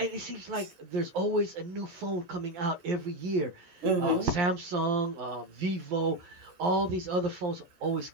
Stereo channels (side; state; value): left; late; 11 ms